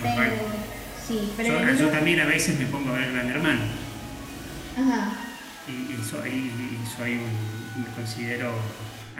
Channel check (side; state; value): both; identical; correlation 1.00